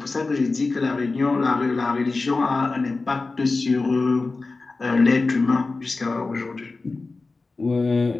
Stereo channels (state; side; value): quieter; right; 3.7 dB